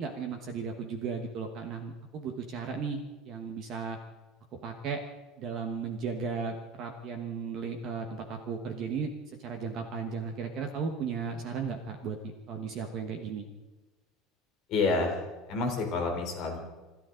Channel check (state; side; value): normal; both; correlation 0.35